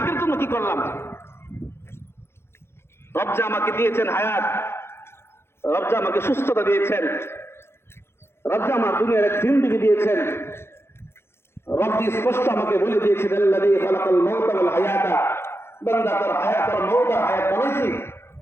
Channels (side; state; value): right; late; 0.12 ms